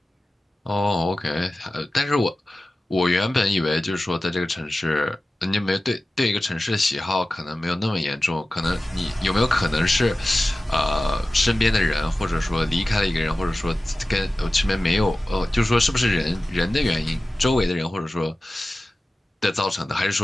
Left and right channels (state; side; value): normal; both; correlation 0.96